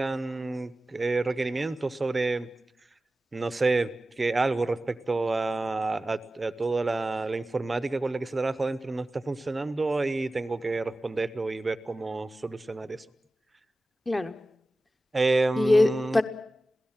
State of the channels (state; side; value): normal; both; correlation 0.95